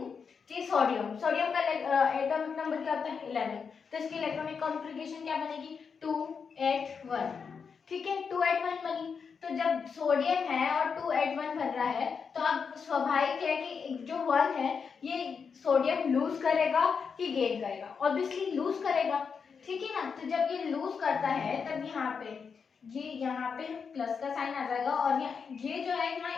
कि सोडियम का एटॉमिक नंबर क्या होता है, 11, तो इसकी इलेक्ट्रॉनिक कॉन्फ़िगरेशन क्या बनेगी, 281। ठीक है, 281 बनी। तो जब सोडियम है और 281 बन रहा है, तो अब स्वाभाविक है कि जो 1 है ये सोडियम लूज करेगा कि गेन करेगा, ऑब्वियसली लूज करेगा। ठीक है ना, तो जब ये लूज करता है तब यहाँ पे प्लस का साइन आ जाएगा, और ये जो है यहाँ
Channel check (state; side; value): quieter; right; 5.9 dB